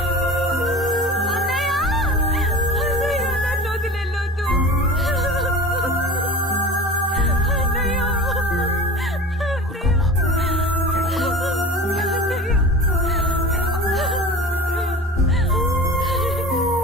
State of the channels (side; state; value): both; normal; correlation 0.36